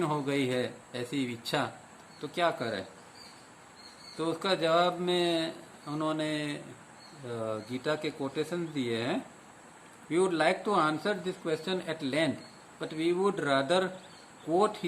हो गई है ऐसी इच्छा, तो क्या करें। तो उसका जवाब में उन्होंने गीता के कोटेशन दिए हैं। We would like to answer this question at length, but we would rather quote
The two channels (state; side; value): identical; both; correlation 1.00